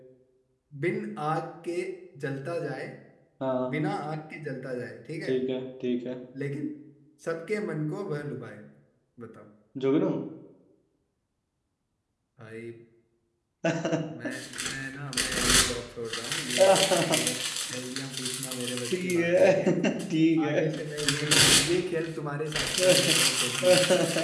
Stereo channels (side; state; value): both; identical; correlation 1.00